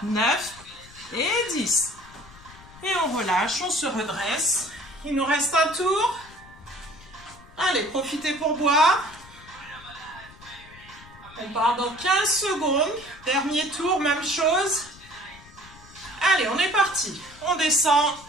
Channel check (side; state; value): left; noise; rumble, 21 dB below the sound